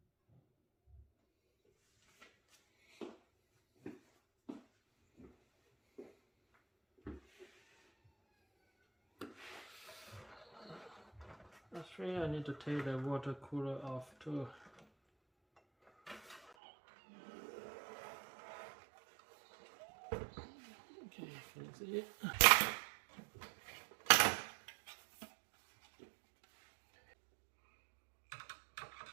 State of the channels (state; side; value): drops out; left; at 16.4 s